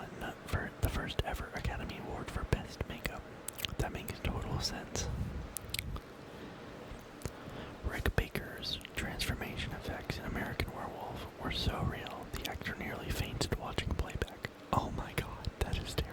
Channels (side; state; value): both; identical; correlation 1.00